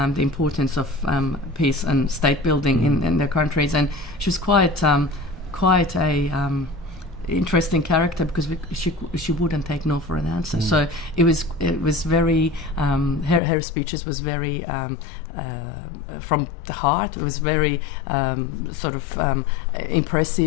the importance of peace and state building in their countries, and she was quite a interesting character because she wouldn't take no for an answer. So it was very her speeches was very from the heart. It was very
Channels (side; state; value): right; drops out; at 13.4 s